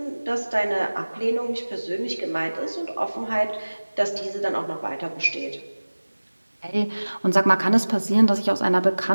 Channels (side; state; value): both; inverted; correlation -1.00